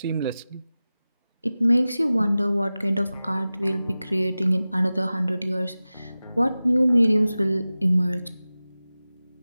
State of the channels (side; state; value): both; inverted; correlation -0.96